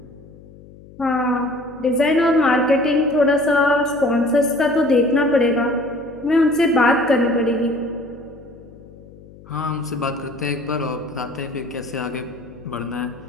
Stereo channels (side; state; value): left; noise; hum, 21 dB below the sound